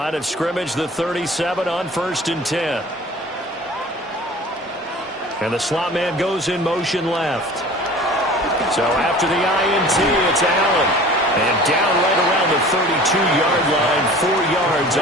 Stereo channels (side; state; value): both; normal; correlation 0.44